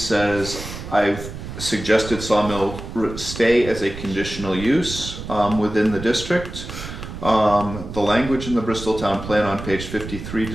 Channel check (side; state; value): right; noise; rumble, 10 dB below the sound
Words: I've suggested sawmill stay as a conditional use within the district. The language in the Bristol Town Plan on page 53